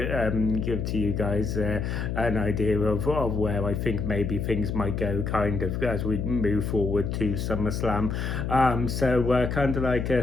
give to you guys an idea of where I think maybe things might go kind of as we move forward to SummerSlam. So kind of like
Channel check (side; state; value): left; noise; hum, 2 dB below the sound